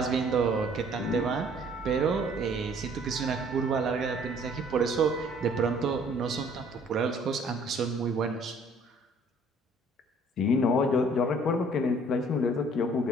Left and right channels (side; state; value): both; normal; correlation 0.57